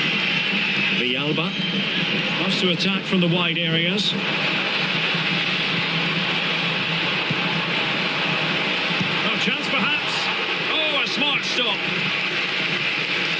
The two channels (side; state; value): both; identical; correlation 1.00